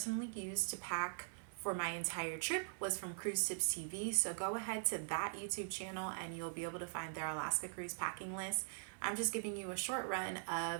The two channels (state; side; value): silent; left; digital silence